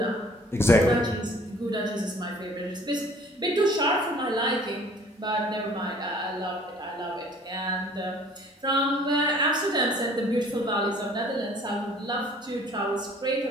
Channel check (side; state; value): both; normal; correlation 0.53